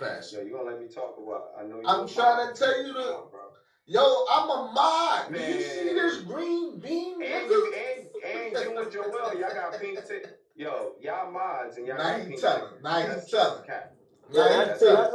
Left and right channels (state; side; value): identical; both; correlation 1.00